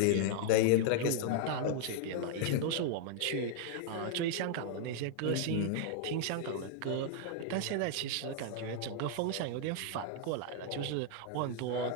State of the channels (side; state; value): both; different; correlation 0.00